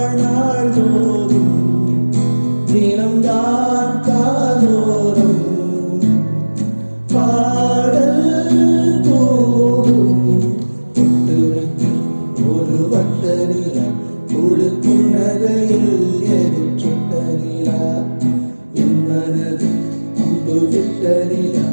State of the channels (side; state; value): both; inverted; correlation -1.00